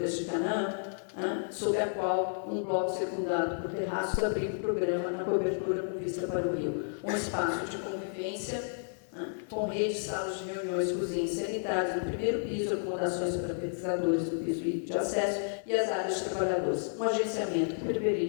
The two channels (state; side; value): silent; right; 57 dB below the other